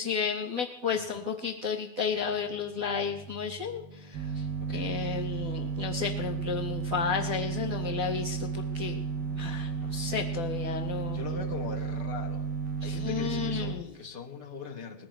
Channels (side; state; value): left; late; 12 ms